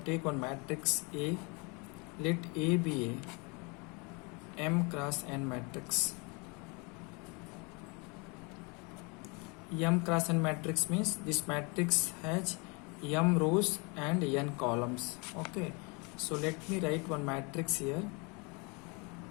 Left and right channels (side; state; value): right; quieter; 30.6 dB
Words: matrix A. Let A be a m cross n matrix. M cross n matrix means this matrix has m rows and n columns. Okay, so let me write one matrix here